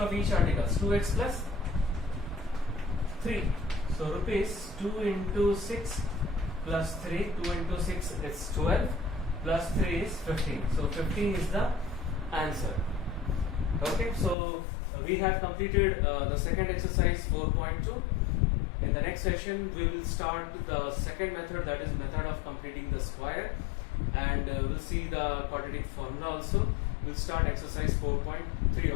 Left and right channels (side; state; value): right; drops out; at 14.4 s